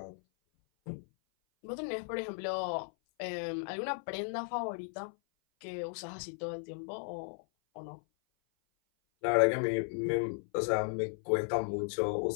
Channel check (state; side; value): silent; right; 54 dB below the other